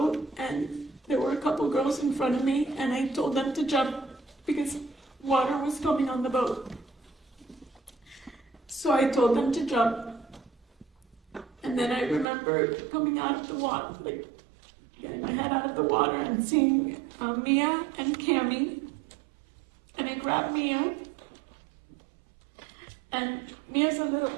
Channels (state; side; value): drops out; left; at 12.2 s